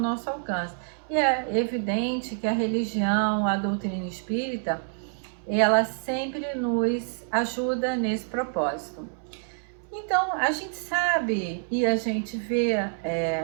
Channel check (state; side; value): silent; left; 60 dB below the other